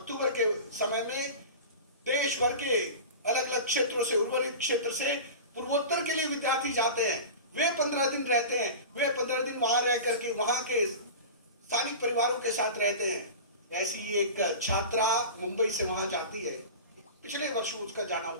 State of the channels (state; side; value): inverted; both; correlation -0.32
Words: के समय में देश भर के अलग अलग क्षेत्रों से, उर्वरित क्षेत्र से पूर्वोत्तर के लिए विद्यार्थी जाते हैं। वे 15 दिन रहते हैं, वे 15 दिन वहां रह करके वहां के स्थानिक परिवारों के साथ रहते हैं। ऐसी एक छात्रा मुंबई से वहां जाती है, पिछले वर्ष उसका जाना